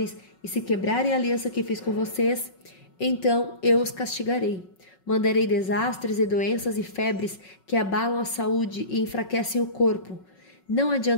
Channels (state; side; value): late; right; 5.4 ms